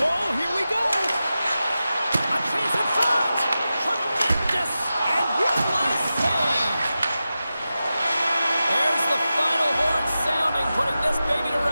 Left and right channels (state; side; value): inverted; both; correlation -0.93